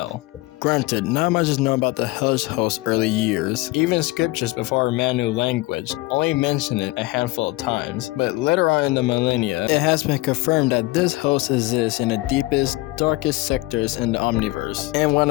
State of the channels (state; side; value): quieter; right; 20.8 dB